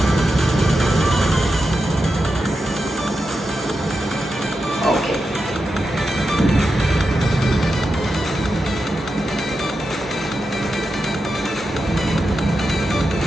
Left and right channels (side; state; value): both; normal; correlation 0.89